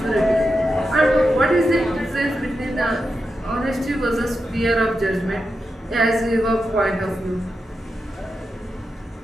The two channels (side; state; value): both; normal; correlation 0.88